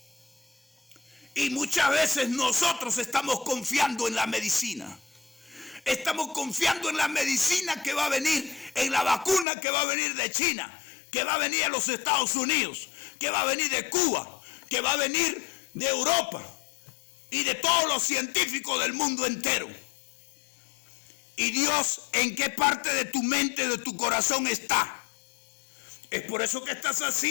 Y muchas veces nosotros estamos confiando en la medicina. Estamos confiando en la medicina que va a venir, en la vacuna que va a venir de China, que va a venir de los Estados Unidos, que va a venir de Cuba, que va a venir de Europa y de todos los científicos del mundo entero. ¿Y Dios en qué parte de tu mente, de tu corazón está? ¿Es por eso que estás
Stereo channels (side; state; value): right; drops out; at 9.5 s